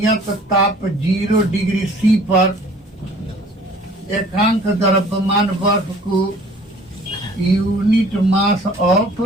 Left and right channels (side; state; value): both; normal; correlation 0.52